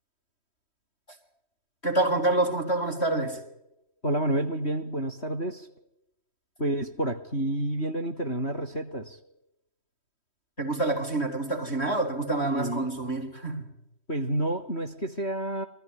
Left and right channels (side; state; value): right; late; 3.1 ms